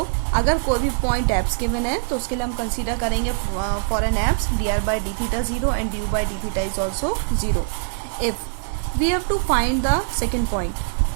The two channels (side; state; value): left; silent; digital silence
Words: अगर कोई भी पॉइंट एप्स गिवन है तो उसके लिए हम कंसीडर करेंगे for an apse dr by d theta 0 and du by d theta is also 0. If we have to find the second point,